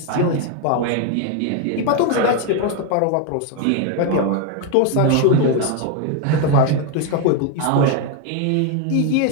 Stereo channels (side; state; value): both; different; correlation 0.01